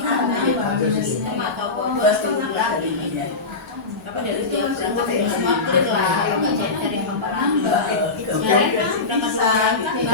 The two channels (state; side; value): quieter; right; 3.7 dB